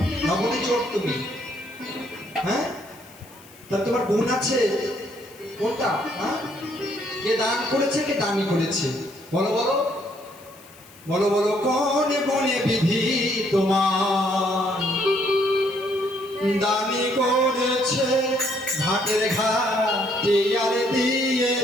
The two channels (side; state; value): left; noise; hiss, 24 dB below the sound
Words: নবনী চোর তুমি। হ্যাঁ, তা তোমার গুণ আছে কোনটা? হ্যাঁ, কে দান করেছে, কে দানি করেছে? বলো বলো বলো বলো, কোনে বনে বিধি তোমার দানি করেছে, ঘাটের ঘাটে আর